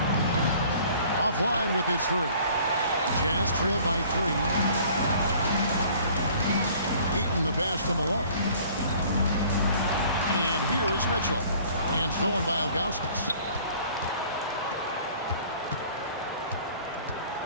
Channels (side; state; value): both; inverted; correlation -0.52